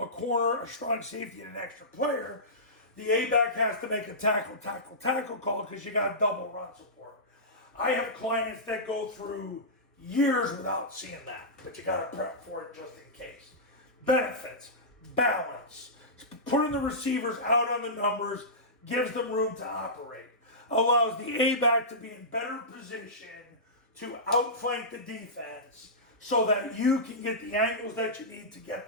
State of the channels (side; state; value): both; normal; correlation -0.17